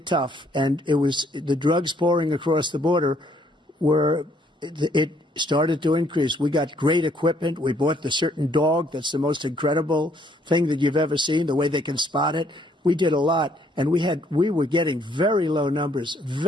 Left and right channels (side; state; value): both; normal; correlation 0.66